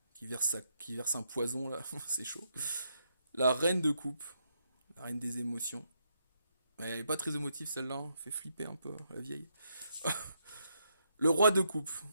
qui verse un poison là, c'est chaud. La reine de coupe, la reine des émotions. Mais elle est pas très émotive celle-là, hein. Fait flipper un peu, la vieille. Le roi de coupe.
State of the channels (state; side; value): inverted; both; correlation -0.78